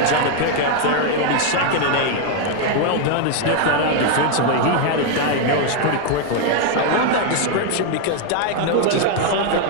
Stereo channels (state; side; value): different; both; correlation 0.01